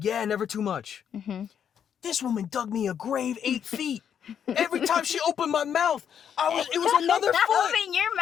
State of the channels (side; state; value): right; quieter; 8.4 dB